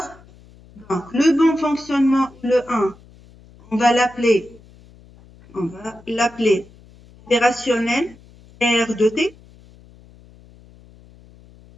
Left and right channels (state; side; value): noise; left; hum, 25 dB below the sound